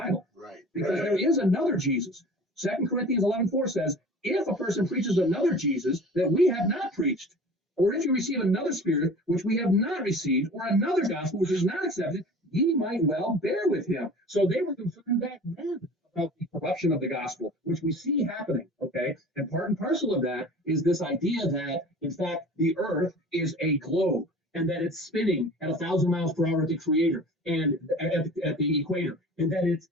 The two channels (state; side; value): normal; both; correlation 0.41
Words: Right. Because there is another Jesus. 2 Corinthians 11:4 says, if a person preaches another Jesus that we have not preached, or if you receive another spirit which we have not received, or another gospel which is not accepted, ye might well bear with him. So they were concerned back then about the corruption of the gospel, which we see happening, okay? And part and parcel of that is this idea that, in fact, the earth is a globe, and that it's spinning at 1,000 miles per hour at the creator and at the equator, and that